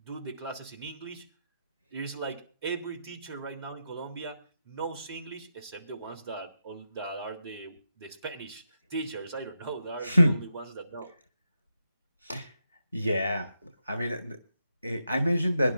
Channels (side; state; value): both; inverted; correlation -0.85